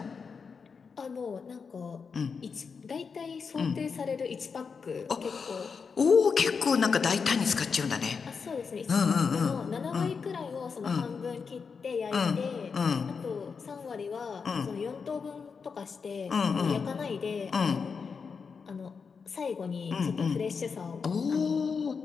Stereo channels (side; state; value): right; quieter; 5.5 dB